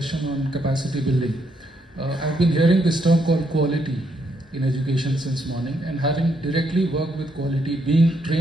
on capacity building, I've been hearing this term called quality in education since morning, and having directly worked with quality, being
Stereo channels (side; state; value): both; normal; correlation 0.76